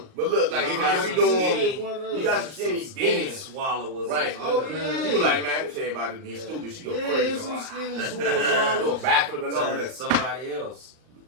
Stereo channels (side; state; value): left; late; 39 ms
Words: but look, like if you doing, you got some skinny skinny demons. swallowers. Right. Oh, yeah. You be like, man, this everybody be stupid. She go Yeah, crazy. some skinny Go swallows. backflip and all Telling that. somebody else.